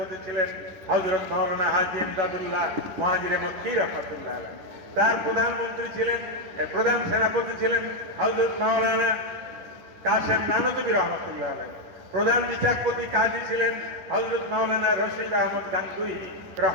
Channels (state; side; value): late; left; 10 ms